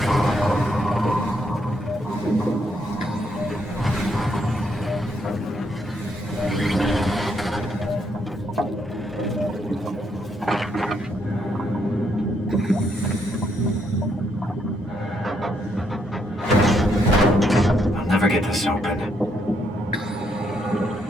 I'll never get this open.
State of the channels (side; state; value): both; normal; correlation 0.75